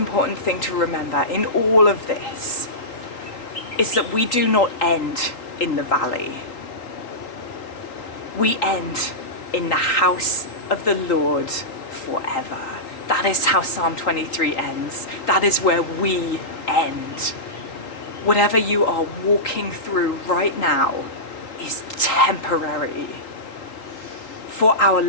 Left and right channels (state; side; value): late; right; 3.9 ms